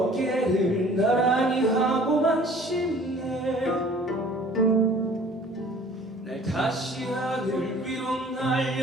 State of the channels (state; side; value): normal; both; correlation 0.51